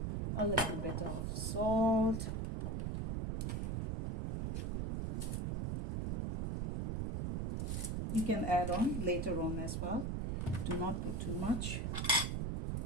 a little bit of salt, you can add on later on as well. Do not put too much,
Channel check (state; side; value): noise; right; rumble, 1 dB below the sound